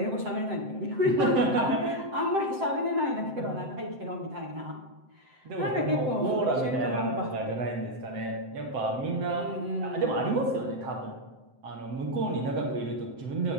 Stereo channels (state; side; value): late; left; 7.8 ms